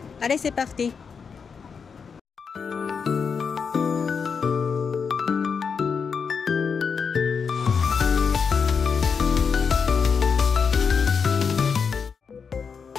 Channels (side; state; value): right; quieter; 5.9 dB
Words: Allez, c'est parti.